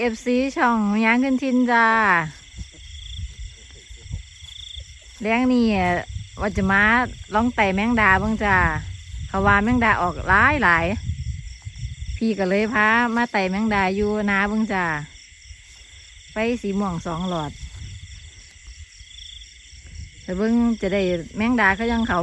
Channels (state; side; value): identical; both; correlation 1.00